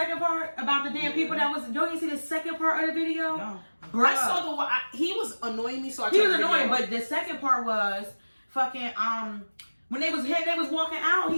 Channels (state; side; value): inverted; both; correlation -1.00